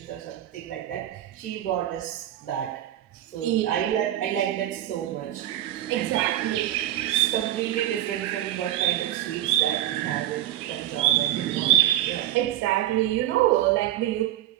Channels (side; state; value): left; quieter; 12.9 dB